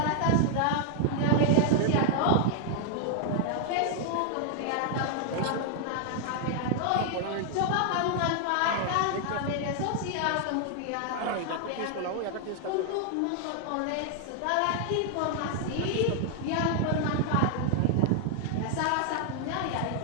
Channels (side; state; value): both; different; correlation 0.00